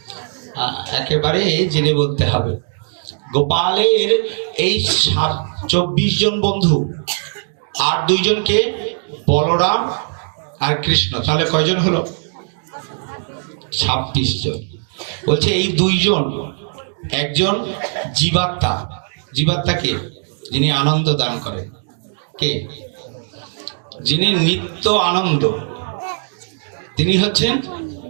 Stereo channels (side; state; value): left; silent; digital silence